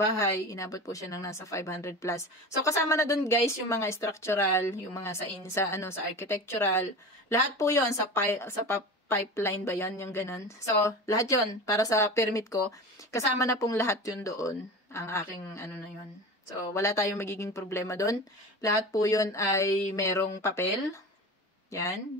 inabot po siya ng nasa 500 plus. So, kasama na doon guys, yung mga structural, yung mga sa architectural, lahat po yon sa pipeline ba yan, yung ganun. So, lahat yon para sa permit ko, kasama na pong lahat yun doon, ang aking, na yun. So, wala tayong magiging problema doon. Lahat po yun ay merong papel. Yan.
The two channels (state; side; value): normal; both; correlation 0.31